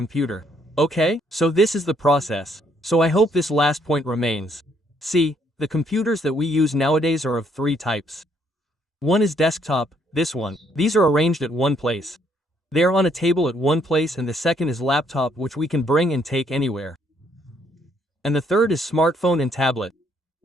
Okay, so this is the process. So I hope this last point remains. See, the computers that we use nowadays are of three types. One is desktop, this one. These are arranged at one place. They are on a table at one place, and the second is laptop, which we can bring and take anywhere. And the third is smartphone and tablet.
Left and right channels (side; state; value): both; normal; correlation 0.69